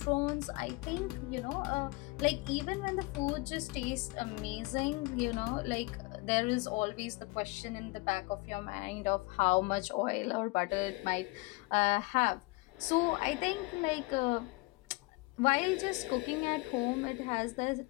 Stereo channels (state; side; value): quieter; right; 24.6 dB